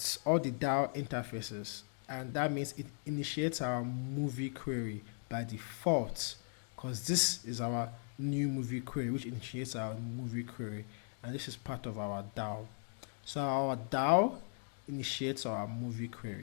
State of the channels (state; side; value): silent; right; 52 dB below the other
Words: all the DAO interfaces, and that means it initiates our movie query by default, because this is our new movie query, which initiates our movie query, and this is part of our DAO. So our DAO initiates our movie